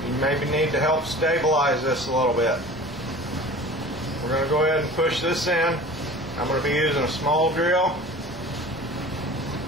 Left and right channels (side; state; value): both; normal; correlation 0.40